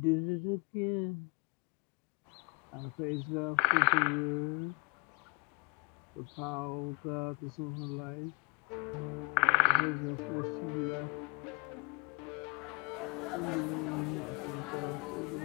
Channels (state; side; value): quieter; right; 31.6 dB